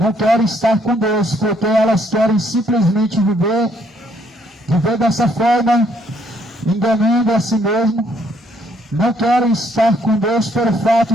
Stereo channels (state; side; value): normal; both; correlation 0.68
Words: estar com Deus, porque elas querem simplesmente viver dessa forma, enganando a si mesmo. Não querem estar com Deus pelo fato